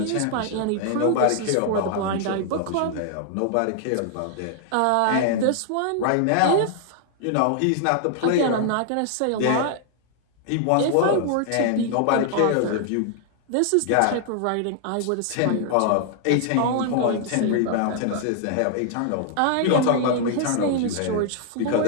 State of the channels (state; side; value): different; both; correlation 0.00